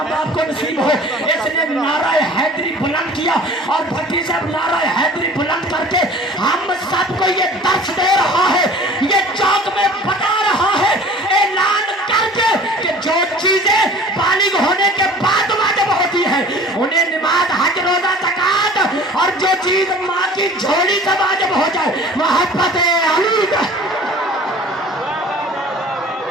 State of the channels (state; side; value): normal; both; correlation 0.46